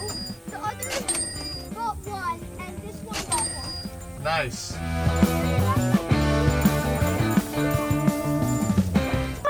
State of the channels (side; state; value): both; identical; correlation 1.00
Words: the other bought 1, and this one bought 1. Nice.